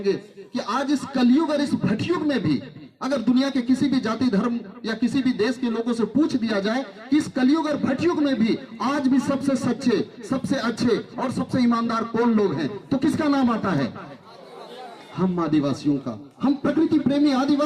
कि आज इस कलयुग और इस भटयुग में भी अगर दुनिया के किसी भी जाति धर्म या किसी भी देश के लोगों से पूछ दिया जाए कि इस कलयुग और भटयुग में भी आज भी सबसे सच्चे, सबसे अच्छे और सबसे ईमानदार कौन लोग हैं, तो किसका नाम आता है? हम आदिवासियों का, हम प्रकृति प्रेमी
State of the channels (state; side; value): identical; both; correlation 1.00